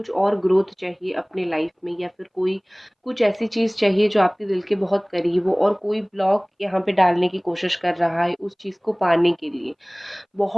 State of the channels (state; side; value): identical; both; correlation 1.00